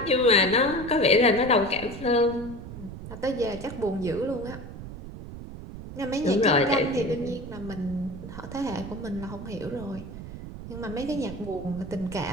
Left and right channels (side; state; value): right; noise; rumble, 11 dB below the sound